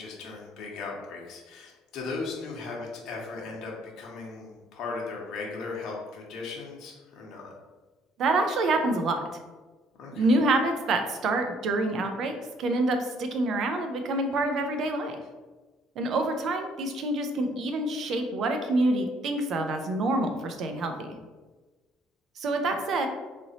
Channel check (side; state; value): both; normal; correlation 0.63